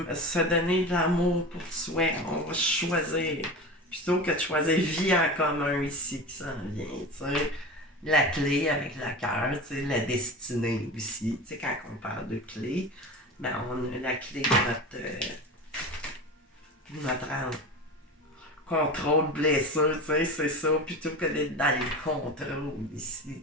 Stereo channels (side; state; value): both; normal; correlation 0.30